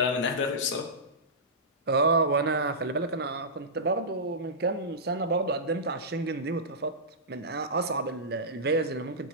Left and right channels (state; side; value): normal; both; correlation -0.17